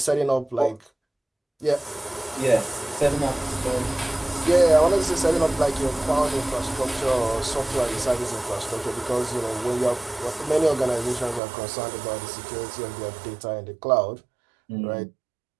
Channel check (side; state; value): left; drops out; at 11.4 s